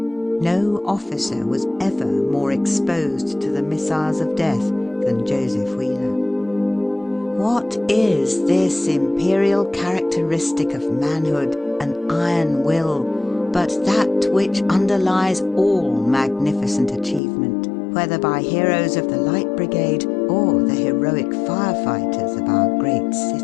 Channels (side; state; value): right; drops out; at 17.2 s